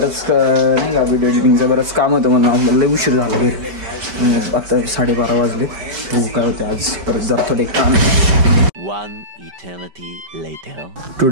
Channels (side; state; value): left; late; 5.2 ms